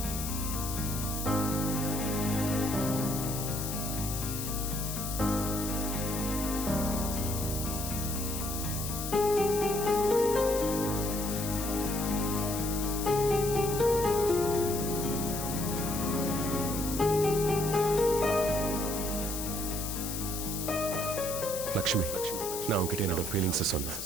லக்ஷ்மி, நான் உன்கிட்ட என்னோட ஃபீலிங்ஸ் சொன்னேன்.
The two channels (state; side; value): noise; left; hiss, 5 dB below the sound